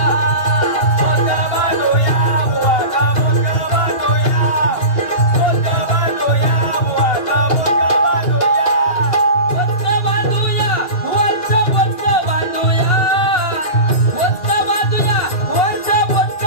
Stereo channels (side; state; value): right; late; 2.8 ms